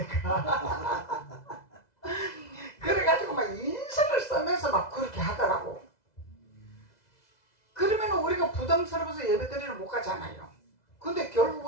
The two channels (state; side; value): late; right; 2.0 ms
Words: 그래가지고 막 인상을 쓰면서 막 그렇게 하더라고. 그러면 우리가 부담스러워서 예배드리러 못 가잖아요. 근데